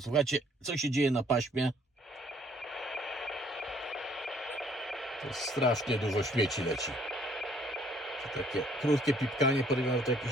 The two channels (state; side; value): normal; both; correlation 0.62